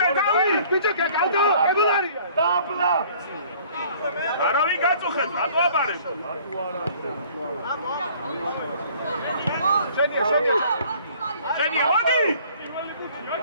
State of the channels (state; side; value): inverted; both; correlation -0.54